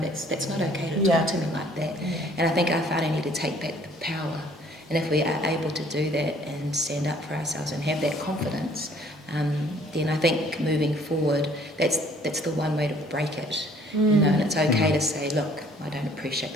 not okay to talk to me like that. And I think our whānau need to take back the power. And if we are able to do that and stand up for ourselves and have that confidence, then I think moving forward, that's the one way to break it. You know, and it's okay to say, look, I don't appreciate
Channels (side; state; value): both; normal; correlation 0.58